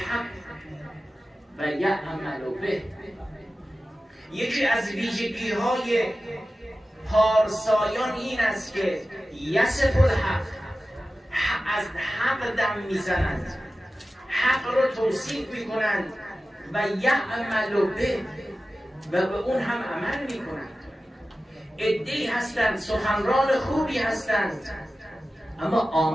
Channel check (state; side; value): normal; both; correlation 0.95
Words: و یعمل به. یکی از ویژگی های پارسایان این است که یصف الحق، از حق دم میزنند، حق رو توصیف میکنند، و یعمل به، و به اون هم عمل میکنند. عده‌ای هستند سخنران خوبی هستند اما